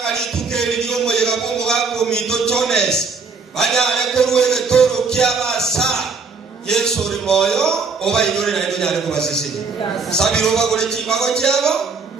tukeri yo moyo gabongo gako mito chones banyare koruwe toro kiabasa Yesu uri moyo oba inyore na ndo nyare ko basisi sabiro bagore chimago cyabo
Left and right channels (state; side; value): quieter; left; 4.7 dB